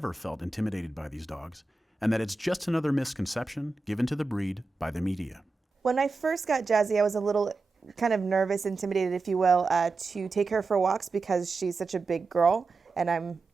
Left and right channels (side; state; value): left; quieter; 3.7 dB